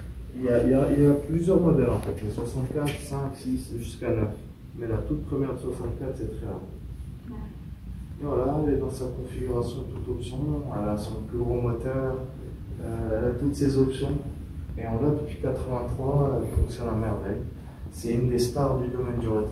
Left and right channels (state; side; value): identical; both; correlation 1.00